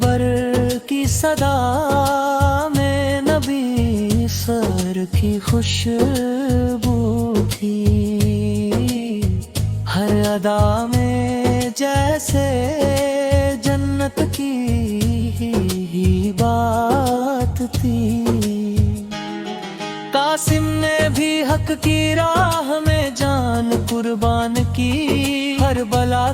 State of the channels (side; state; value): both; identical; correlation 1.00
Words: کی صدا میں نبی سر کی خوشبو تھی، ہر ادا میں جیسے جنت کی ہی بات تھی۔ قاسم نے بھی حق کی راہ میں جان قربان کی، ہر بلا